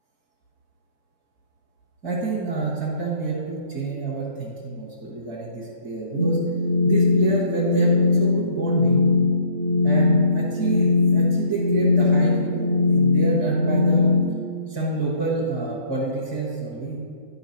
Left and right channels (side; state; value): both; inverted; correlation -0.61